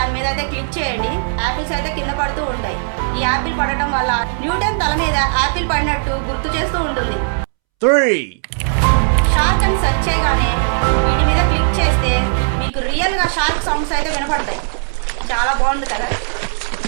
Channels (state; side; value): silent; left; 68 dB below the other